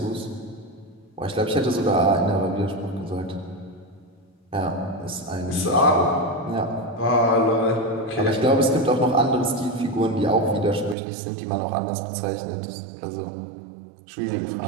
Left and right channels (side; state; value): left; drops out; at 11.0 s